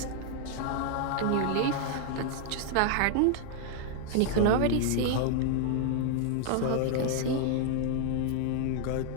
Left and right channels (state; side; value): different; both; correlation 0.00